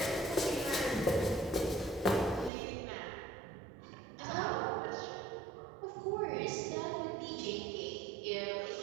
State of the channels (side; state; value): left; drops out; at 2.5 s